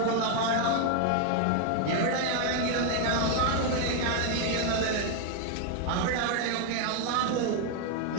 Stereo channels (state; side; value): different; both; correlation 0.01